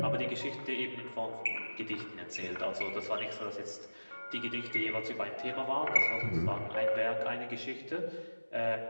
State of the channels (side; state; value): both; inverted; correlation -1.00